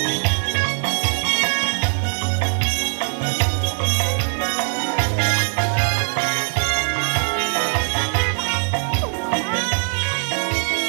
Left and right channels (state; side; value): silent; left; 56 dB below the other